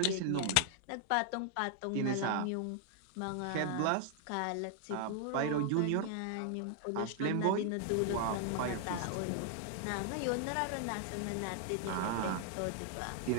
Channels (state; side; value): different; both; correlation 0.00